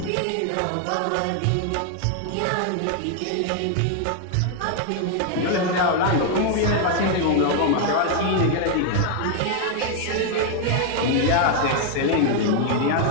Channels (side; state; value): both; different; correlation 0.00